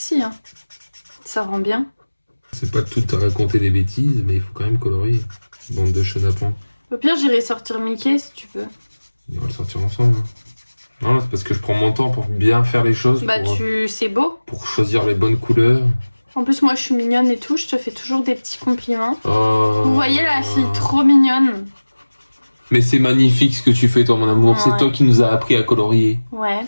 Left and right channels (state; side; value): inverted; both; correlation -1.00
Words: Hein. Ça rend bien. C'est pas tout à raconter des bêtises, mais il faut quand même colorier. Bande de chenapans. Au pire, j'irai sortir Mickey si tu veux. On va le sortir ensemble. Non, c'est parce que je prends mon temps pour bien faire les choses. Bah c'est beau. Pour choisir les bonnes couleurs. En plus, moi, je suis mignonne et tout. Je te fais toujours des petits compliments. Oh. Vous voyez la fille trop mignonne. Mais c'est magnifique ce que tu fais, toi, mon amour. Ouais. C'est toi qui nous as appris à colorier. Ouais.